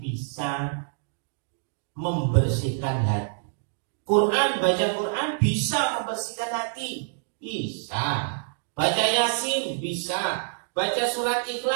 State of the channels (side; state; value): left; silent; digital silence